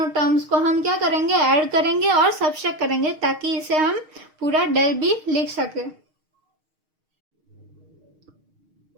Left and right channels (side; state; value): left; late; 6.4 ms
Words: टर्म्स को हम क्या करेंगे, ऐड करेंगे और सब्ट्रैक्ट करेंगे, ताकि इसे हम पूरा डेल बी लिख सके।